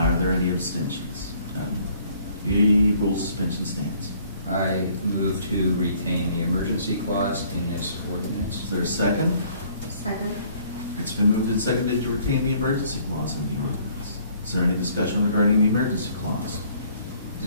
there any abstentions? None. The rule suspension stands. I move to retain the emergency clause in this ordinance. Is there a second? Second. It's been moved and seconded to retain the emergency clause in the ordinance. Is there any discussion regarding the emergency clause?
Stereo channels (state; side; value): inverted; both; correlation -0.60